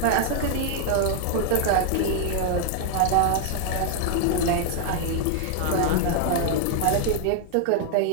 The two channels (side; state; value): both; different; correlation 0.00